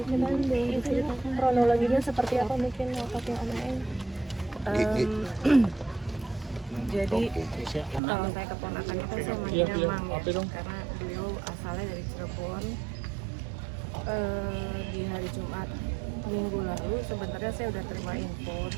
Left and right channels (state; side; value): drops out; left; at 8.0 s